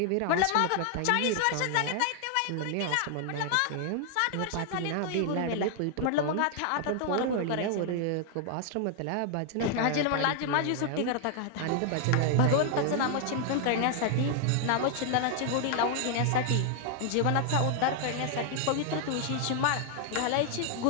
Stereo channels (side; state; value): both; different; correlation 0.00